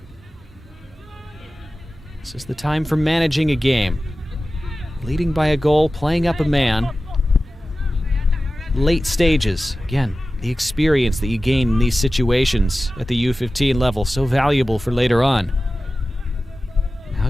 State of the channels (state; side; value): normal; both; correlation 0.95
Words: This is the time for managing a game. Leading by a goal, playing up a man. Late stages. Again, the experience that you gain in these situations at the U-15 level, so valuable for later on. How